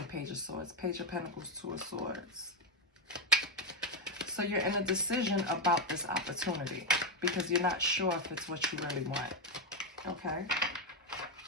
Page of Swords. Page of Pentacles, Two of Swords. So you're in a decision about this opportunity because you're not sure if it's what you really want. Okay.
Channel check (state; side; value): normal; both; correlation 0.06